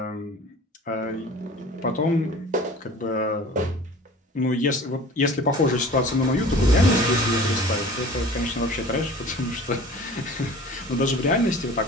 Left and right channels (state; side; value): normal; both; correlation 0.43